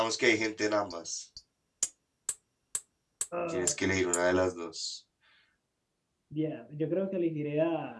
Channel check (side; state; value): both; identical; correlation 1.00